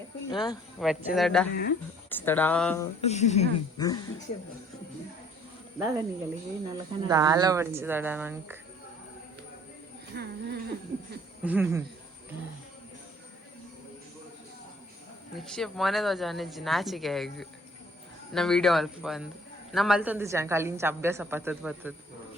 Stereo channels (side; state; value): both; normal; correlation 0.57